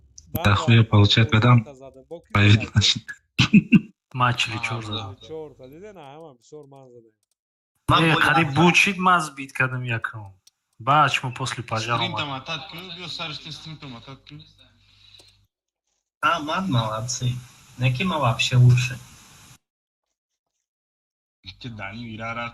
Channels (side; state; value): both; identical; correlation 1.00